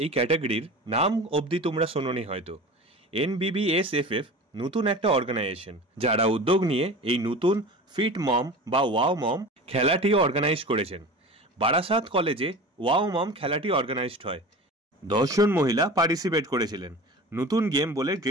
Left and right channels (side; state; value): both; normal; correlation 0.35